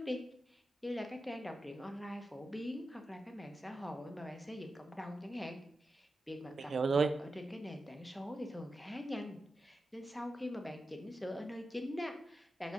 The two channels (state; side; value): normal; both; correlation 0.91